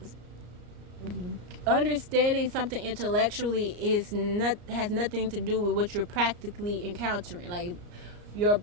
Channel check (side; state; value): left; late; 34 ms